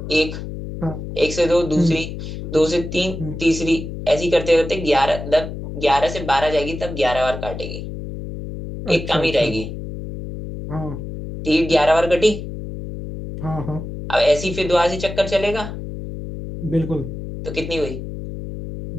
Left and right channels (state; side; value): noise; left; hum, 8 dB below the sound